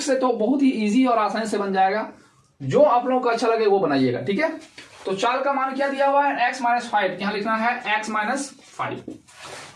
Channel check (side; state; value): both; identical; correlation 1.00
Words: से तो बहुत ही इजी और आसानी से बन जाएगा। जो आप लोगों को अच्छा लगे वो बनाइएगा। ठीक है, तो चाल का मान क्या दिया हुआ है, x - 5, यहां लिखना है x - 5।